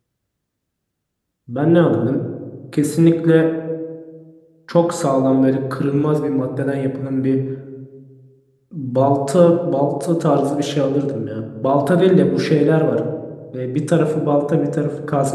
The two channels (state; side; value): identical; both; correlation 1.00